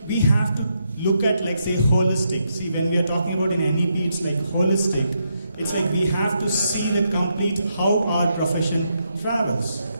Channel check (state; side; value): inverted; both; correlation -0.80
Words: we have to look at, like, say, holistic. See, when we are talking about in NEP, it's like holistic. It's like we have to see the complete how our profession travels.